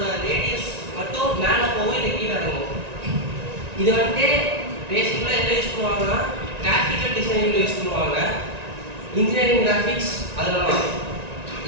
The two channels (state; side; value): late; left; 1.9 ms